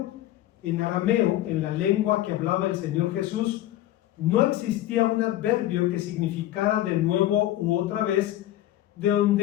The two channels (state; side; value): quieter; right; 14.0 dB